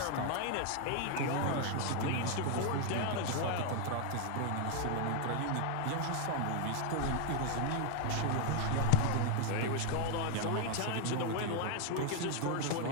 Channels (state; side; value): different; both; correlation 0.01